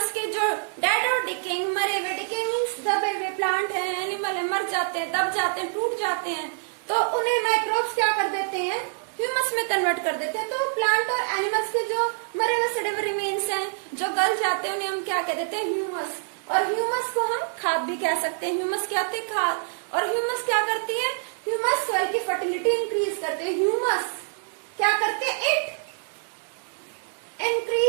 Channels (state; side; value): silent; left; digital silence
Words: के जो dead और decaying, मरे हुए, decaying means दबे हुए प्लांट है, एनिमल है, मर जाते हैं, दब जाते हैं, टूट जाते हैं, तो उन्हें माइक्रोब्स क्या कर देते हैं, ह्यूमस में कन्वर्ट कर देते हैं। तो प्लांट और एनिमल्स के जो मरे हुए सड़े हुए रिमेन्स हैं, जो गल जाते हैं, उन्हें हम क्या कह देते हैं, ह्यूमस। और ह्यूमस को हम खाद भी कह सकते हैं। ह्यूमस क्या होती है, खाद। और ह्यूमस क्या करती है, ह्यूमस सॉइल की फर्टिलिटी इंक्रीज करते हैं। ह्यूमस क्या करते हैं, it